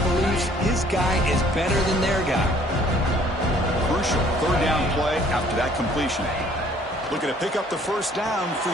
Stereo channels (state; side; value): normal; both; correlation 0.58